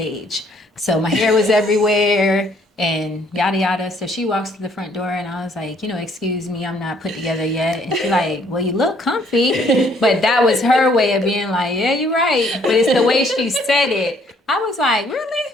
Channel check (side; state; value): both; normal; correlation 0.64